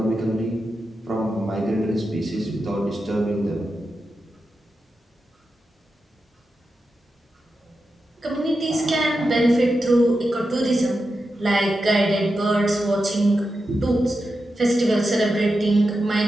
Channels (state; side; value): normal; both; correlation 0.89